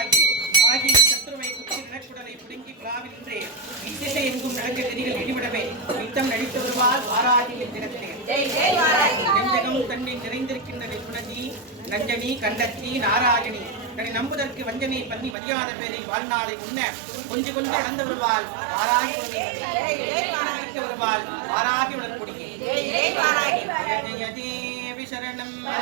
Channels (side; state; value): left; drops out; at 15.4 s